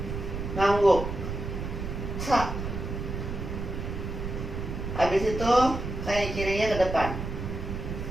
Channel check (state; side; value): noise; right; rumble, 5 dB below the sound